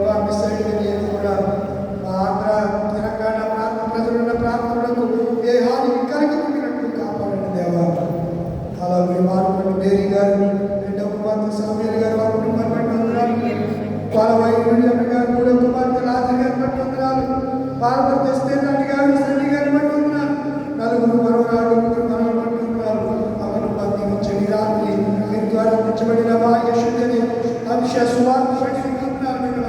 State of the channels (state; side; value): identical; both; correlation 1.00